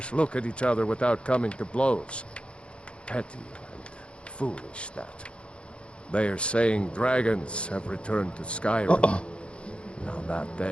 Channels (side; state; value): right; late; 0.058 ms